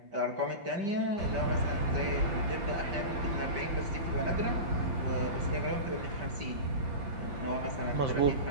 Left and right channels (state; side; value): late; left; 5.8 ms